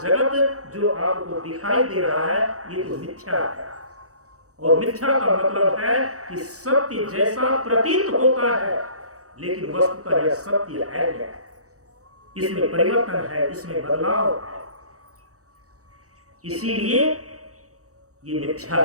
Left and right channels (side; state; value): left; late; 0.66 ms